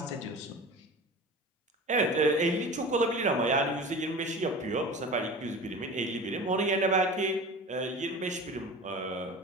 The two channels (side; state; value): both; normal; correlation 0.35